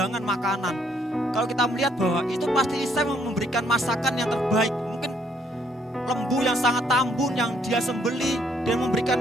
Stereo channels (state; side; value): normal; both; correlation 0.68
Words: makanan. Kalau kita melihat bahwa itu pasti Isai memberikan masakan yang terbaik. Mungkin lembu yang sangat tambun yang dia sembeli, dan memberikan